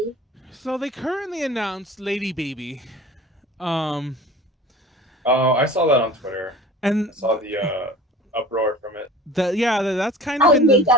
So they currently announced Lady Baby. Oh, I saw that on Twitter. And I saw the uproar from it. That's kind of I made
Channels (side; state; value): both; normal; correlation 0.41